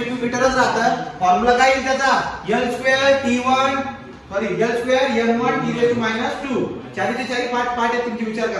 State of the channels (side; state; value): both; identical; correlation 1.00